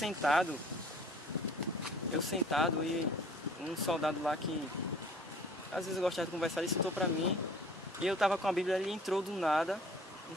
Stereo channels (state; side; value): normal; both; correlation 0.51